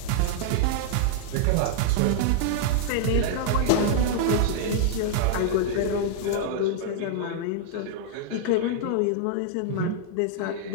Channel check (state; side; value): different; both; correlation -0.01